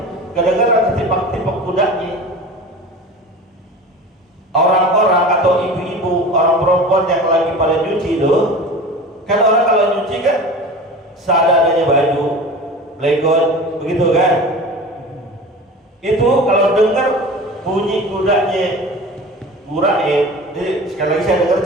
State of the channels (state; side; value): normal; both; correlation 0.35